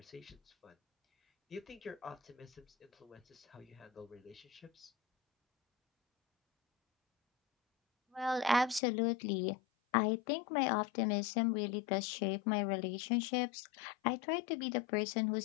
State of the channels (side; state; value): right; drops out; at 8.8 s